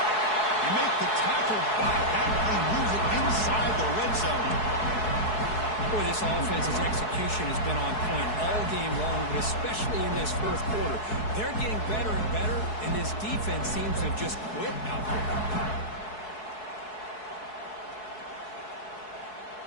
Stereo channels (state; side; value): late; right; 4.7 ms